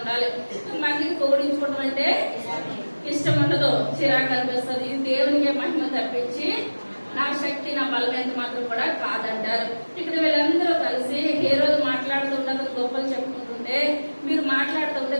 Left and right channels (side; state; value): both; inverted; correlation -1.00